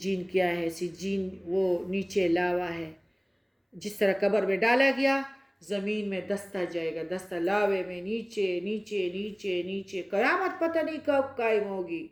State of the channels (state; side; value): identical; both; correlation 1.00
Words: کیا ہے؟ سجین وہ نیچے لاوا ہے. جس طرح قبر میں ڈالا گیا زمین میں دستا جائے گا، دستا لاوے میں نیچے نیچے نیچے نیچے. قیامت پتہ نہیں کب قائم ہوگی.